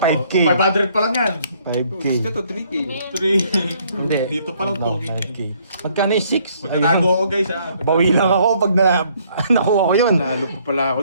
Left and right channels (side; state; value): both; inverted; correlation -0.65